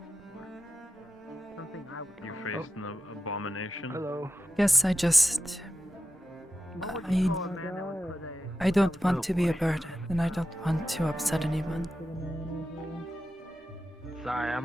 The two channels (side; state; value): both; normal; correlation 0.89